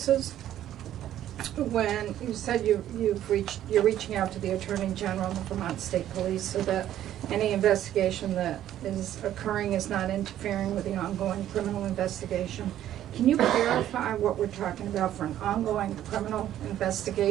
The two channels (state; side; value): quieter; left; 12.0 dB